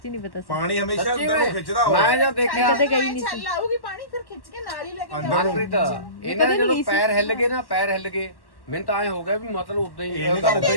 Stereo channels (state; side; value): late; right; 1.1 ms